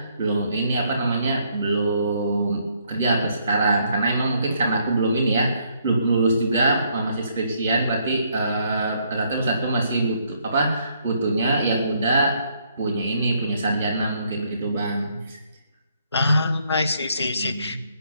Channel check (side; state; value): both; inverted; correlation -0.70